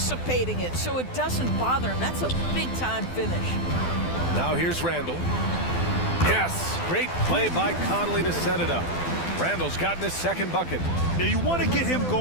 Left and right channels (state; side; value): late; right; 12 ms